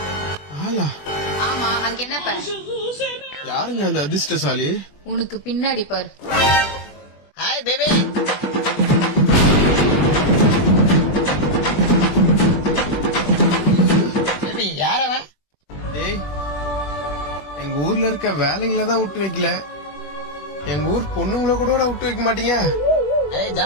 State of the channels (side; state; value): right; late; 20 ms